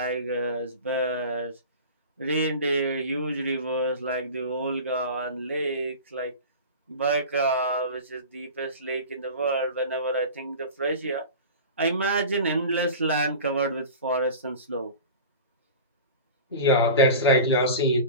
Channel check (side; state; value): both; inverted; correlation -0.34